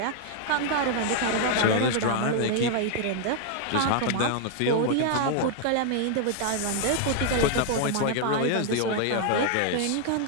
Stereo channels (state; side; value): different; both; correlation 0.00